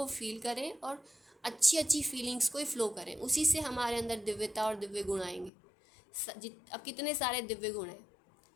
फील करें और अच्छी फीलिंग्स को ही फ्लो करें, उसी से हमारे अंदर दिव्यता और दिव्य गुण आएंगे। अब कितने सारे दिव्य गुण हैं,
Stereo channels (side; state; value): right; drops out; at 5.5 s